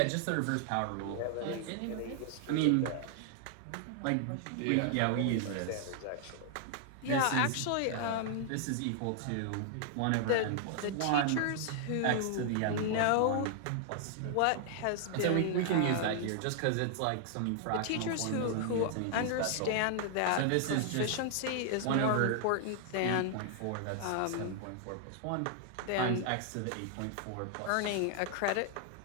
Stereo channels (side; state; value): both; different; correlation 0.00